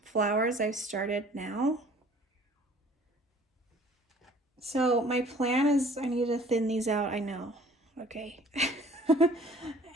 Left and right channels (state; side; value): normal; both; correlation 0.52